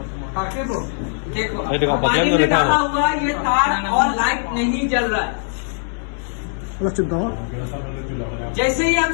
देखो पानी में डाला हुआ ये तार और लाइट नहीं जल रहा है। जैसे ही हम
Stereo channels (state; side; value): silent; right; digital silence